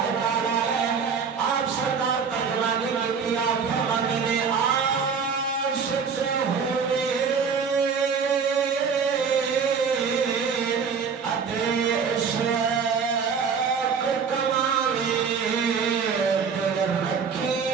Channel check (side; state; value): left; quieter; 6.0 dB